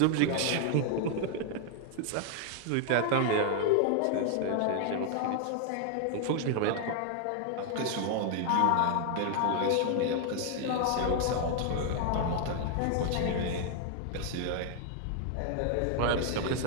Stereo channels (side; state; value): both; different; correlation 0.00